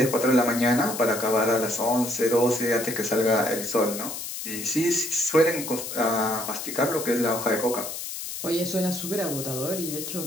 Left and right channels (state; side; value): noise; left; hiss, 7 dB below the sound